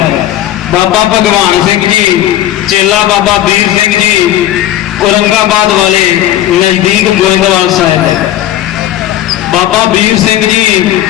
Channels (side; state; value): right; quieter; 13.1 dB